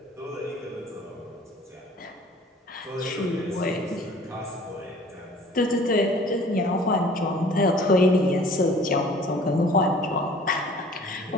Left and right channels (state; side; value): normal; both; correlation 0.50